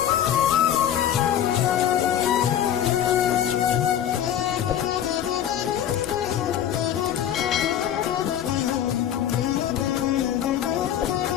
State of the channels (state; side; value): quieter; right; 10.4 dB